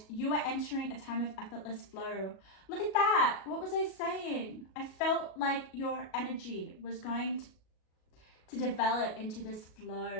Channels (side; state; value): right; late; 37 ms